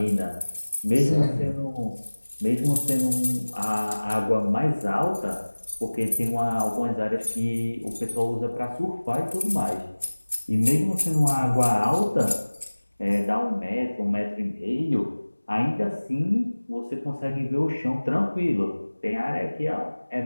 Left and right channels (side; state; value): both; inverted; correlation -1.00